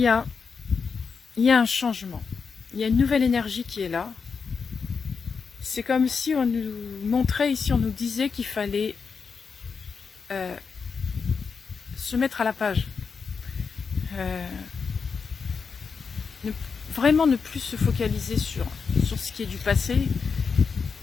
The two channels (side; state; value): right; quieter; 5.5 dB